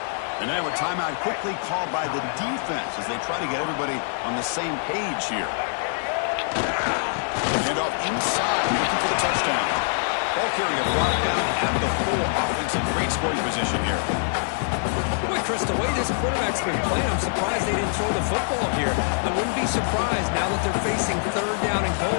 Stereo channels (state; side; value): silent; right; 56 dB below the other